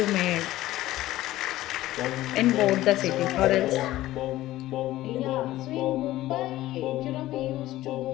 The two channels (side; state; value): right; quieter; 15.7 dB